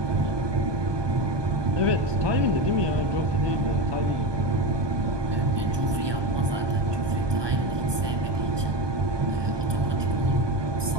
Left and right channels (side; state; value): left; late; 1.2 ms